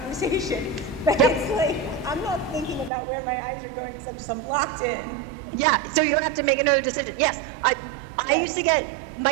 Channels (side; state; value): left; drops out; at 2.9 s